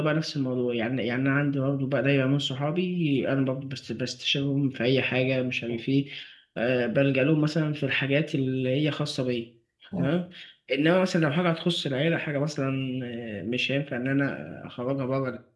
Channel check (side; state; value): both; identical; correlation 1.00